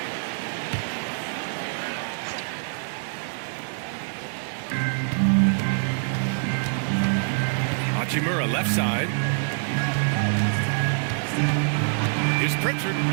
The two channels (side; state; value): left; silent; 61 dB below the other